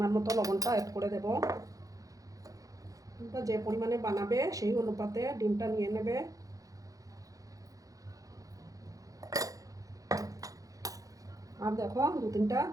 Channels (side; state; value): left; late; 0.17 ms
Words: মতো লবণটা অ্যাড করে দেব। যে পরিমাণে বানাবে সেই অনুপাতে ডিমটা নিয়ে নেবে। আর দেখো 2-3টা